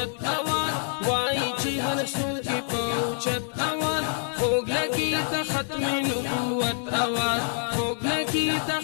आवाज وای چې هر څوک په اوچت आवाज خوږ لګي د ختم نبوت आवाज خوږ لګي د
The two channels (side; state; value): right; silent; digital silence